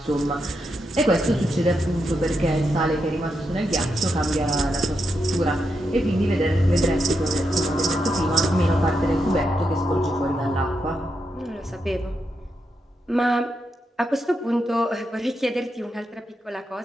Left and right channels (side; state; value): both; normal; correlation 0.84